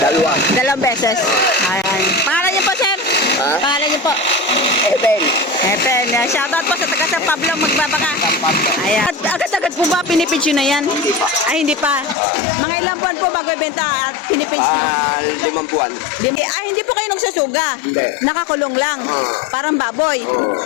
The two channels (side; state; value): right; drops out; at 12.2 s